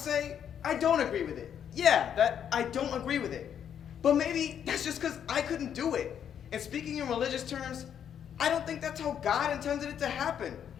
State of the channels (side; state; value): right; quieter; 8.8 dB